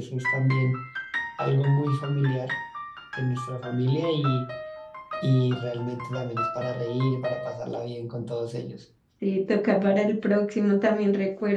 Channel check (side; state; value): both; identical; correlation 1.00